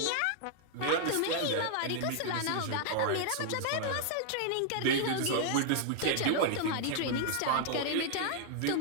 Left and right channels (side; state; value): both; different; correlation 0.00